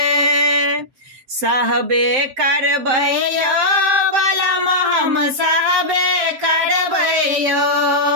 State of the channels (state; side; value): late; left; 7.6 ms